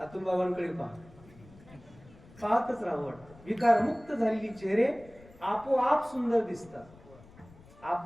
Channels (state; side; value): noise; left; rumble, 23 dB below the sound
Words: बाबांकडे पहा, पाहतच राहावं वाटतं. विकारमुक्त झालेली चेहरे आपोआप सुंदर दिसतात.